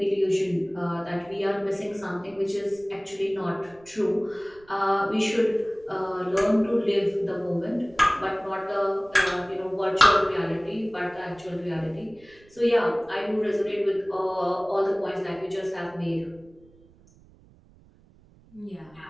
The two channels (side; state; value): right; noise; rumble, 27 dB below the sound